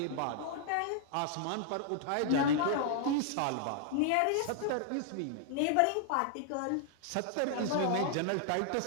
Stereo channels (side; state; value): both; different; correlation -0.01